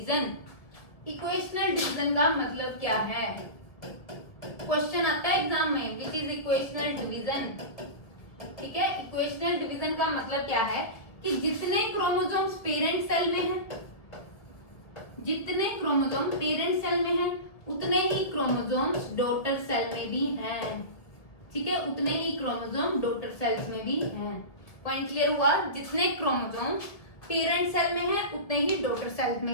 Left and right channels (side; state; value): right; late; 1.5 ms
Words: इक्वेशनल डिवीजन का मतलब क्या है? क्वेश्चन आता है एग्जाम में, विच इज इक्वेशनल डिवीजन, ठीक है। इक्वेशनल डिवीजन का मतलब क्या है कि जितने क्रोमोसोम्स पेरेंट सेल में हैं, जितने क्रोमोसोम पेरेंट सेल में हैं, उतने ही क्रोमोसोम्स डॉटर सेल में भी हैं, ठीक है, उतने ही क्रोमोसोम डॉटर सेल्स में भी हैं। पॉइंट क्लियर हुआ? जितने क्रोमोसोम पेरेंट सेल में हैं, उतने ही डॉटर सेल